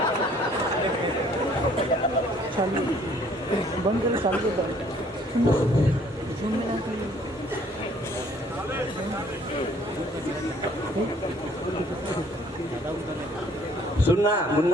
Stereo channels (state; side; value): normal; both; correlation 0.59